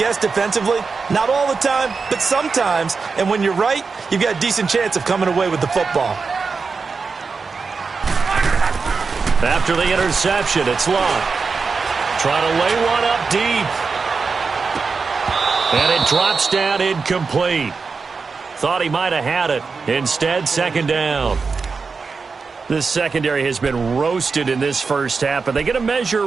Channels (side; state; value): left; quieter; 4.8 dB